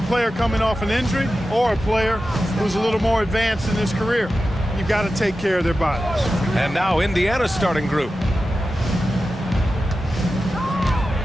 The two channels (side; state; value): both; normal; correlation 0.93